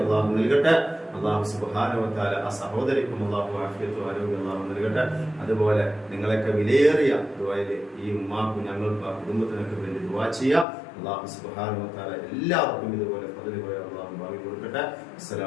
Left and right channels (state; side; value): drops out; right; at 10.7 s